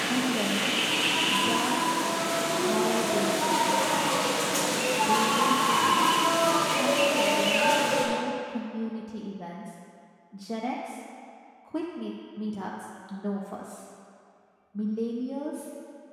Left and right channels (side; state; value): both; identical; correlation 1.00